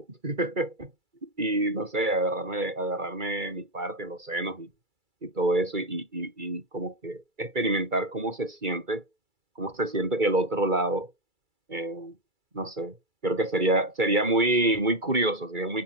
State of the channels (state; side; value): late; left; 2.3 ms